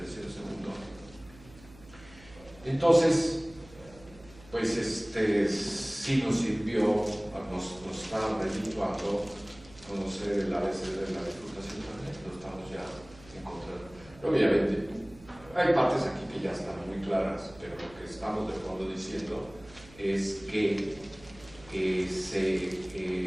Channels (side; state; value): right; noise; hum, 22 dB below the sound